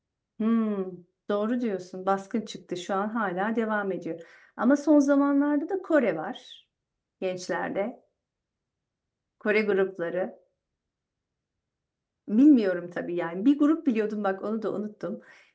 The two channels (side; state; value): both; identical; correlation 1.00